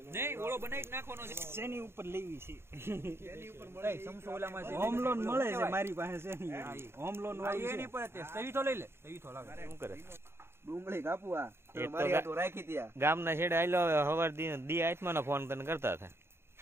નહીં ઓળો બનાવી નાખવાનો છે શેની ઉપર લેવી છે એની ઉપર મળે સમસો ઓલામાં છે હોમ લોન મળે છે મારી પાસે શેની હોમ લોન વાળી એની પર તે સહી તો લઈ લે સહી તો લાગે શું કરે ડુંગળી કાપવા એ તો મારી હાટુ રાખી ત્યાં ગામના છેડે આયલો હવાર દી આત્માનો ફોન તને કરતા હતા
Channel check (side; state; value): left; late; 0.12 ms